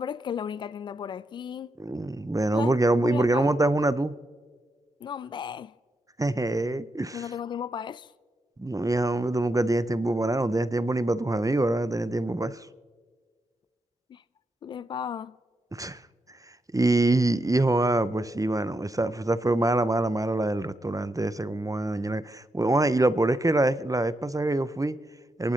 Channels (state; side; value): normal; both; correlation 0.83